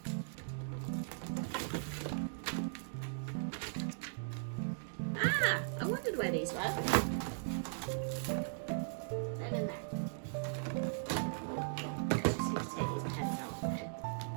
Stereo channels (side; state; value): left; silent; digital silence